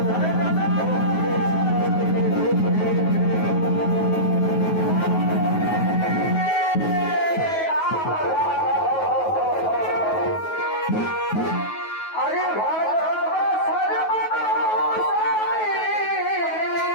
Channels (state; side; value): late; right; 9.3 ms